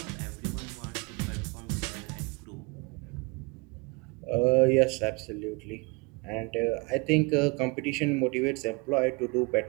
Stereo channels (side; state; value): left; quieter; 28.7 dB